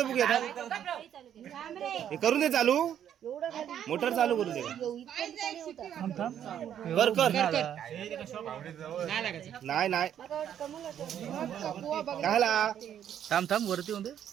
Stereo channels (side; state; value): left; quieter; 9.8 dB